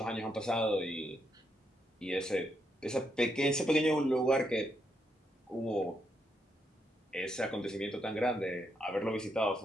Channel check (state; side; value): normal; both; correlation 0.79